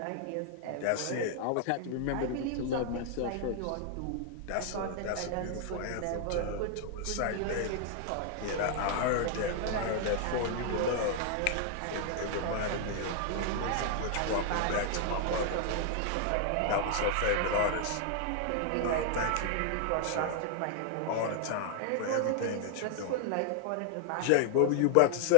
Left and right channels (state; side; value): different; both; correlation 0.00